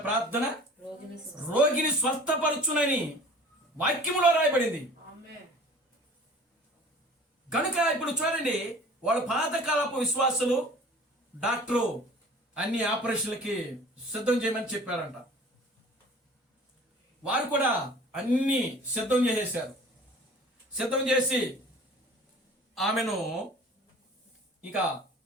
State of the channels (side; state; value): both; normal; correlation 0.45